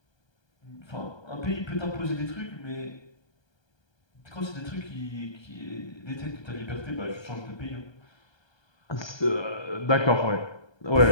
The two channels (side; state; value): right; late; 1.3 ms